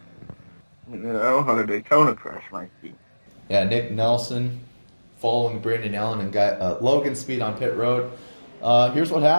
You know how the Daytona crash might be. Yeah, Nick Nelson following Brandon Allen and Logan Speed on pit road. Here's what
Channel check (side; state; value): both; inverted; correlation -1.00